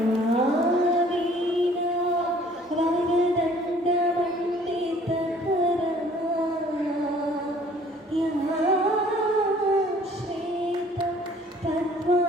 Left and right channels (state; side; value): normal; both; correlation 0.55